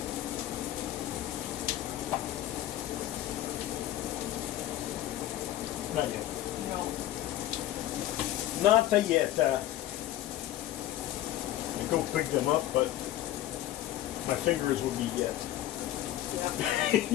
Not yet. No. Not yet. I go pick them up, but my fingers will be yet.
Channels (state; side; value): quieter; right; 13.7 dB